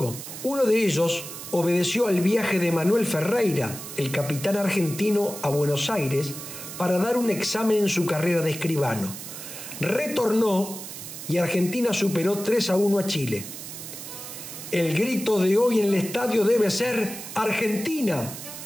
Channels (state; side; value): noise; right; hiss, 11 dB below the sound